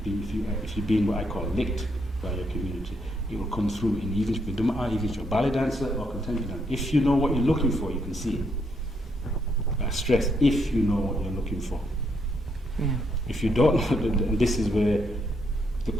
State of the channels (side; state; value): both; normal; correlation 0.75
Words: being what I call licked by your community, it will come through in even if you're a ballet dancer or contemporary dancer. If you know what you're looking for, you can see it. I stress, if you know what you're looking for. Yeah. If you don't know, this is where the